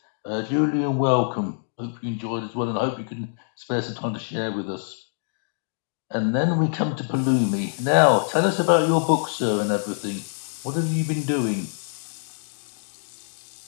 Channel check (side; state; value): right; silent; digital silence